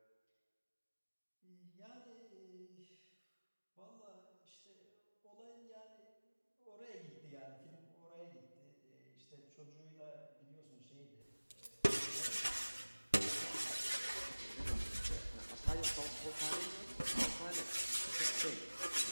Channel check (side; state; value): both; inverted; correlation -1.00